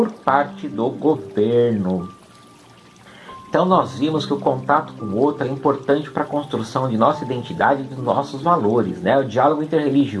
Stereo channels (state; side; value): identical; both; correlation 1.00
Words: parte do governo. Então nós vimos que o contato com o outro é importante para a construção de nossa identidade e dos nossos valores, né? O diálogo